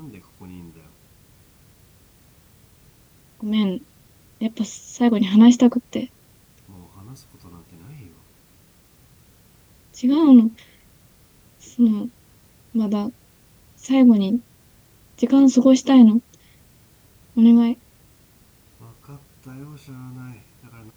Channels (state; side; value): identical; both; correlation 1.00